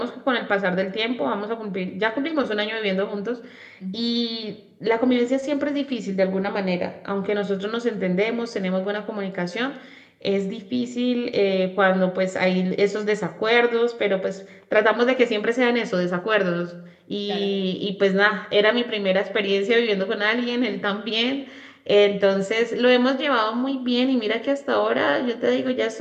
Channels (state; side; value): identical; both; correlation 1.00